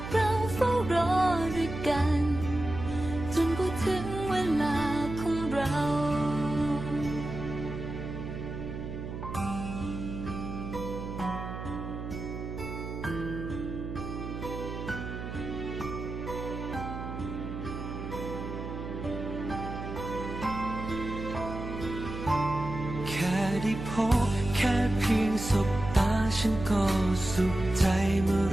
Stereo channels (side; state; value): right; noise; hum, 7 dB below the sound